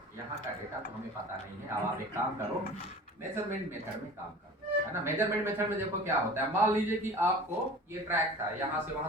यहाँ का डेटा तो हमें पता नहीं है, अब आप एक काम करो, मेजरमेंट मेथड में काम करो, है ना। मेजरमेंट मेथड में देखो क्या होता है, मान लीजिए कि आपको ये ट्रैक था, यहाँ से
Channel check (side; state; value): both; normal; correlation 0.40